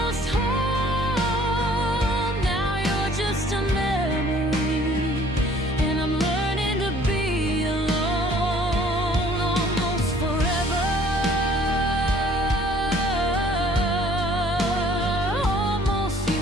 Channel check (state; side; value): normal; both; correlation 0.56